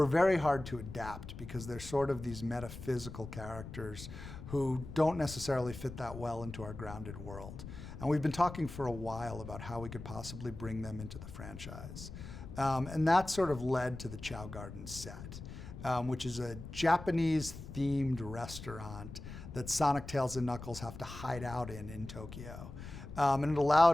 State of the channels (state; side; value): noise; left; rumble, 11 dB below the sound